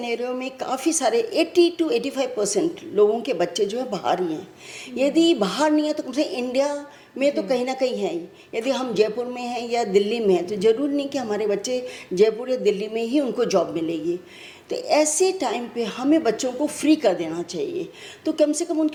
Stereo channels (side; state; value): both; identical; correlation 1.00